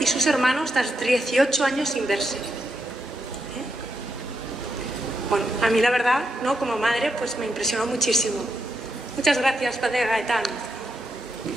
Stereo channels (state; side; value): normal; both; correlation 0.83